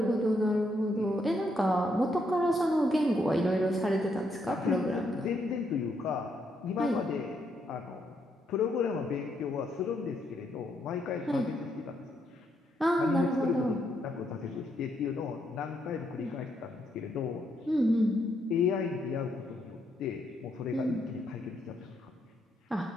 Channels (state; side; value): normal; both; correlation 0.76